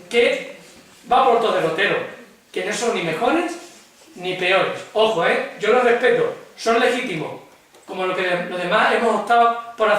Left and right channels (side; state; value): both; identical; correlation 1.00